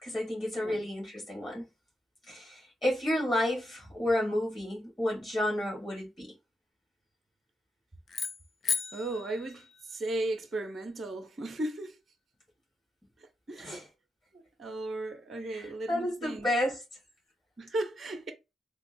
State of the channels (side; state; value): both; normal; correlation 0.84